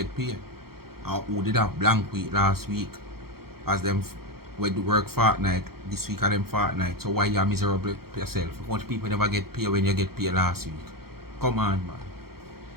paid. And who did have blank week last week? As them when do work fortnight, this week are them fortnight. So why you are miserable yourself? Much people never get paid when you get paid last week. Come on, man.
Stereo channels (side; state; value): left; late; 0.94 ms